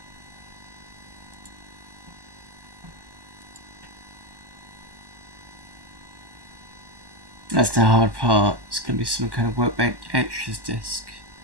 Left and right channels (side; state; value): left; late; 1.1 ms